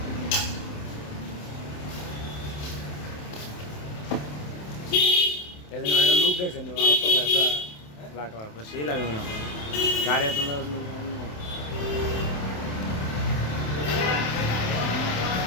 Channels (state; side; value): late; right; 27 ms